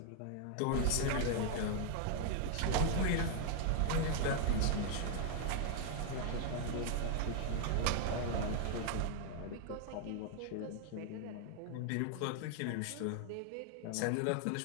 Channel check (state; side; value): different; both; correlation 0.00